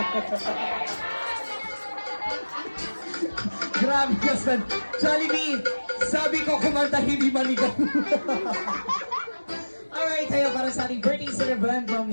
Grabe, Justin. Jollibee, sabi ko kumanta hindi maligaw. Alright, tayo para sa ating birthday celebrant, Ma'am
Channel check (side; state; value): both; inverted; correlation -1.00